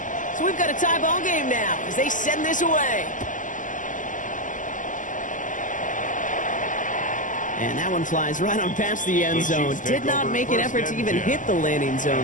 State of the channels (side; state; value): right; late; 0.37 ms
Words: So we've got a tie ball game now as they send this away. And that one flies right on past the end zone. Did not make an effort to even hit the landing